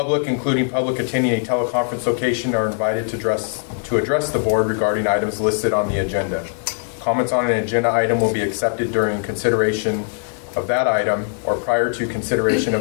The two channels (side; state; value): right; silent; 55 dB below the other